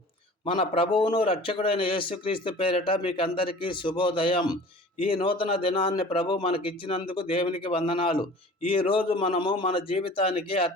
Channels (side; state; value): both; normal; correlation 0.44